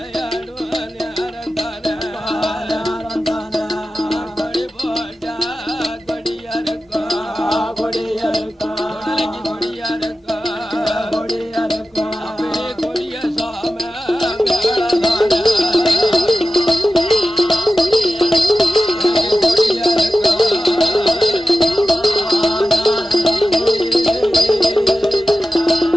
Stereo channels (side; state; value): both; normal; correlation 0.94